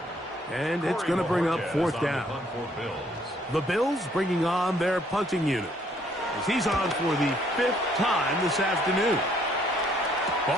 And it's going to bring up fourth down. The Bills bringing on their punting unit, as he's on for the 5th time this afternoon.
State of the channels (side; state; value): both; normal; correlation 0.66